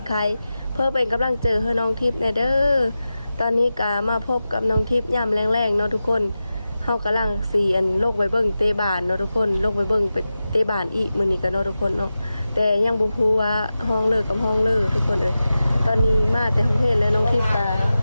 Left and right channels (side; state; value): both; inverted; correlation -0.93